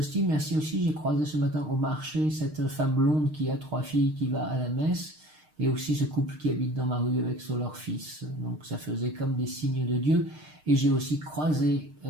Merci aussi, j'ai croisé ce matin au marché cette femme blonde qui a 3 filles qui va à la messe, et aussi ce couple qui habite dans ma rue avec leur fils. Donc ça faisait comme des signes de Dieu. Et j'ai aussi croisé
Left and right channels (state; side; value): late; left; 6.5 ms